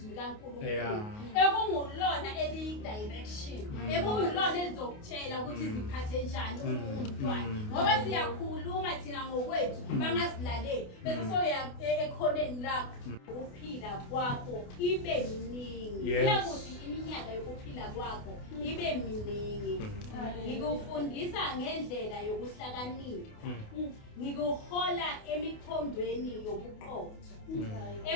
kaNkulunkulu ekungulona eli-direction ekungulona elizokutshela ukuthi ziphathe njani umntwana ngoba siyakhuluma thina ngokwethu bangasilaleli bese soya ekhoneni lakho ukuphila kwakho ibe miningi. Kuyakuthi iminyaka yokuphila kwakho ibe miningi. Ngikufundisa ngendlela yokuhlakanipha ngikuhola emikhondweni yobuqotho.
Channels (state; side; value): late; right; 28 ms